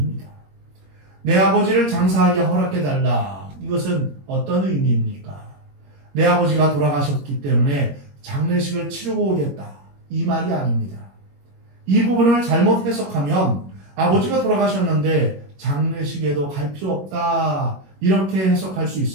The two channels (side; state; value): left; late; 21 ms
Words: 내 아버지를 장사하게 허락해달라. 이것은 어떤 의미입니까? 내 아버지가 돌아가셨기 때문에 장례식을 치르고 오겠다. 이 말이 아닙니다. 이 부분을 잘못 해석하면 아버지가 돌아가셨는데 장례식에도 갈 필요 없다. 이렇게 해석할 수